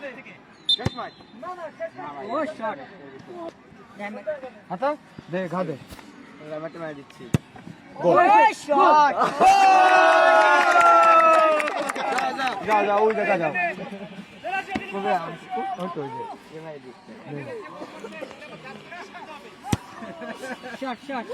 হাতা দে ঘা দে, রামাটে মার দিচ্ছি। গোল শট। যাও যাও ওই দেখা যাও। কবে আমি তো যে এমআই দিচ্ছি। Shot shot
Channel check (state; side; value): identical; both; correlation 1.00